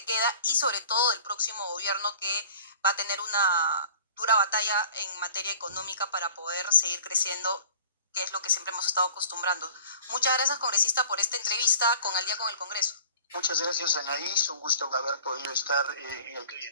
queda, y sobre todo del próximo gobierno, que va a tener una dura batalla en materia económica para poder seguir creciendo, que es lo que siempre hemos estado acostumbrando. Muchas gracias, congresista, por esta entrevista con Al Día con el Congreso. Muchas gracias, Anaís. Un gusto haber podido estar en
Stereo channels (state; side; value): inverted; both; correlation -0.47